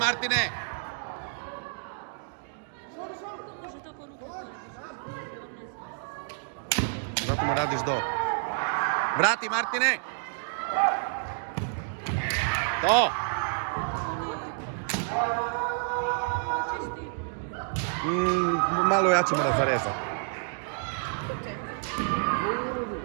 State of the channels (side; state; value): left; silent; digital silence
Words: Zato mu radiš do. Vrati, Martine! To! Malo jače mora zarezati.